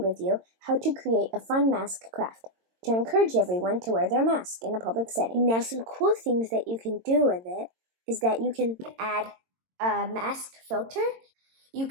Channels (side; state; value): left; late; 22 ms